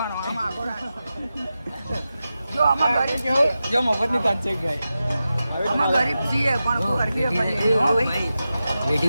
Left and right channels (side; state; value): both; inverted; correlation -0.92